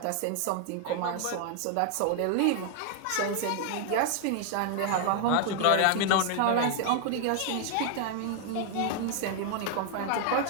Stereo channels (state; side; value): different; both; correlation 0.00